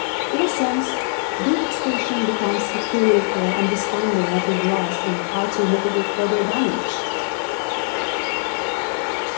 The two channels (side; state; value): right; silent; 58 dB below the other